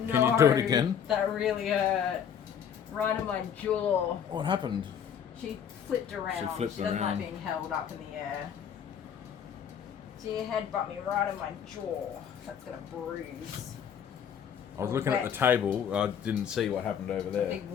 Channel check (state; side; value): quieter; right; 8.2 dB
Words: No, Can you do it again? That really hurt. Right on my jaw. What happened? She flipped around. She flipped doesn't like around. being held up in the air. She headbutt me right in my jaw. That's gonna bruise. I was looking at the table. I didn't see what happened over A there. big